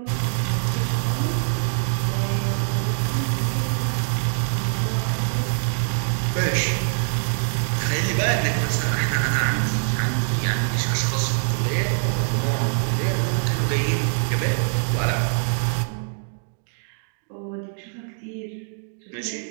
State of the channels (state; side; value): silent; left; 63 dB below the other